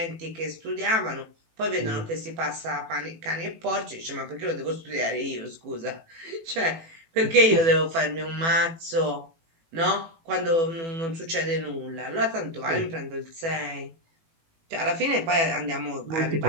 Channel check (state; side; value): late; left; 18 ms